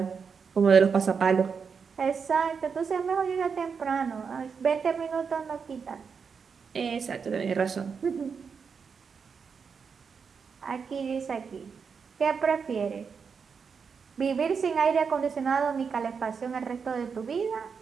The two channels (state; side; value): quieter; left; 5.9 dB